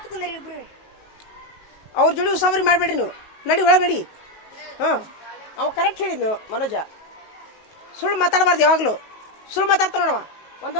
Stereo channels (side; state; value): right; late; 19 ms